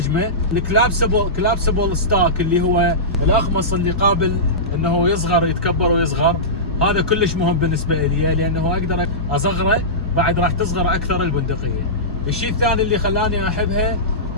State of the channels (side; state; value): both; normal; correlation -0.18